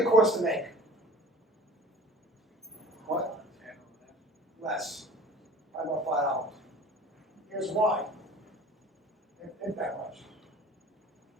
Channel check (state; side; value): normal; both; correlation 0.44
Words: think it costs to make? What? Less. Probably about $5. Here's why. It ain't that much.